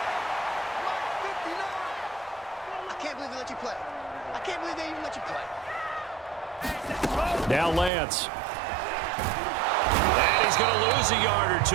Now Lance. And he's going to lose a yard or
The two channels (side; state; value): left; drops out; at 7.9 s